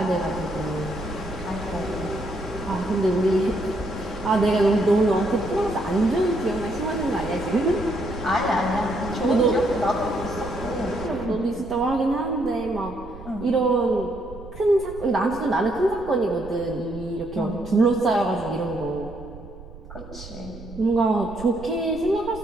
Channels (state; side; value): noise; right; rumble, 16 dB below the sound